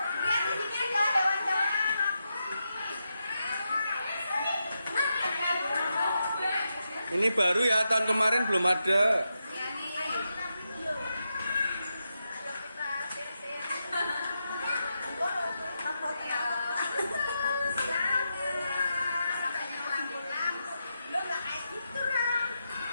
Lihat di sini ada hewan-hewan aku. Ini baru ya, tahun kemarin belum ada. Iya nih. Ayo kita video. Ayo kita share-share. Makanya lampu-lampu. Lo nggak kayak gitu, Ram.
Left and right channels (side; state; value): both; inverted; correlation -0.87